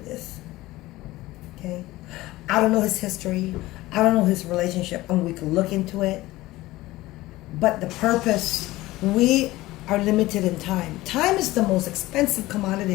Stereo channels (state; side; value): quieter; right; 18.1 dB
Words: Okay? I don't know his history. I don't know his relationship, and we can look into it. But the purpose, we are limited in time. Time is the most expensive